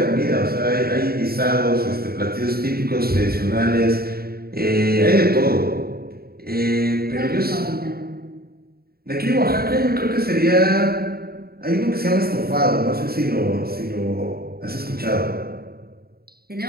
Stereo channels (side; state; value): left; late; 0.45 ms